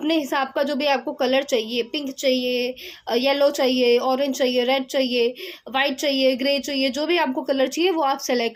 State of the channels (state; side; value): identical; both; correlation 1.00